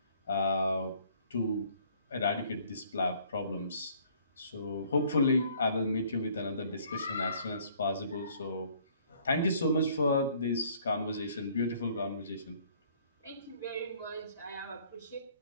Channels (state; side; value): inverted; both; correlation -0.59